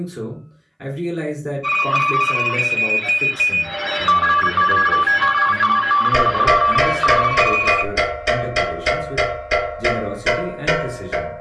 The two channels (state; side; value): identical; both; correlation 1.00